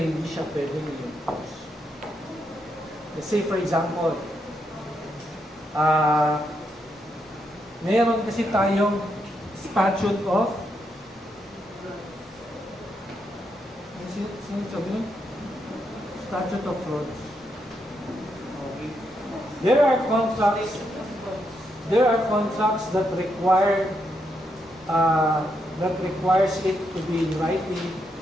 siya pwedeng i-enforce. Let's say for example, mayroon kasi tayong statute of statute of frauds. Okay. There are contracts that require that requires it to be in writing,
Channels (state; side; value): normal; both; correlation 0.80